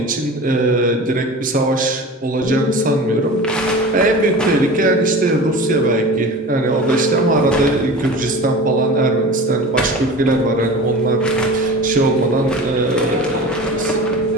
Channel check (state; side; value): normal; both; correlation 0.35